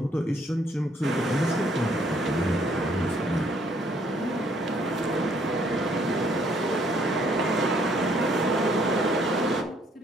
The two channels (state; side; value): normal; both; correlation 0.65